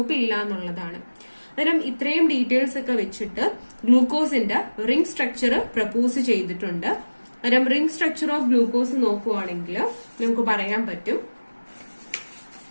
ഇല്ല എന്നുള്ളതാണ്. അന്നേരം ഇത്രയും ഡീറ്റെയിൽസ് ഒക്കെ വെച്ചിട്ട് ഗ്ലൂക്കോസിന്റെ റിംഗ് സ്ട്രക്ചർ പ്രപ്പോസ് ചെയ്തിട്ടുണ്ട്. അന്നേരം റിംഗ് സ്ട്രക്ചർ ഓഫ് ഗ്ലൂക്കോസ് നോക്കുവാണെങ്കിൽ നമുക്ക് പറയാൻ പറ്റും,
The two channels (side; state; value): both; inverted; correlation -1.00